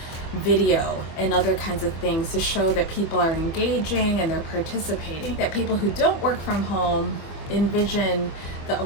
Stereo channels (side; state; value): right; late; 24 ms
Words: video and other kinds of things to show that people are engaging and they're participating. That people who don't work from home envision